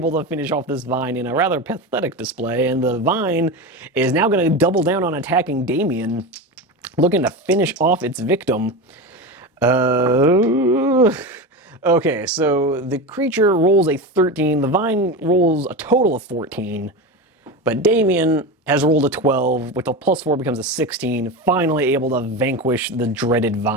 to finish off this Vine in a rather pathetic display, and the Vine is now going to double down on attacking Damien, looking to finish off its victim. Okay, so the creature rolls a 13, the Vine rolls a total of 14, but Damien has rolled a 12, with a +4 becomes a 16, finally able to vanquish the dreaded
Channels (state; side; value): normal; both; correlation 0.22